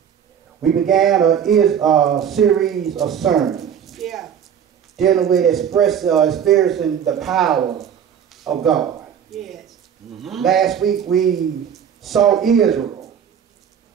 we began a series of sermons dealing with experiencing the power of God. Last week, we saw Israel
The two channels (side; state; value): left; quieter; 8.4 dB